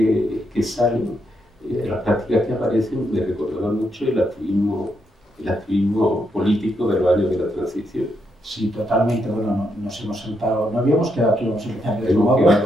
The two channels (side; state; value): both; normal; correlation 0.79